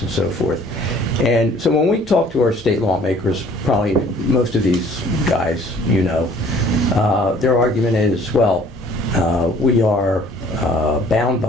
and so forth. And so when we talk to our state lawmakers, probably most of these guys, their argument is, well, we are bound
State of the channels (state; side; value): normal; both; correlation 0.55